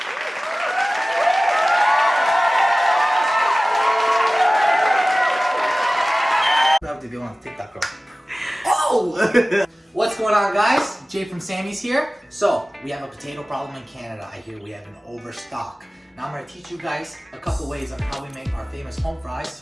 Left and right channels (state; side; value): normal; both; correlation 0.97